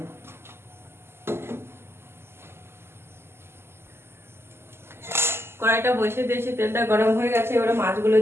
কড়াইটা বসে দিয়েছি, তেলটা গরম হয়ে গেছে, এবারে মাছগুলো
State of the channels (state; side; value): late; left; 0.12 ms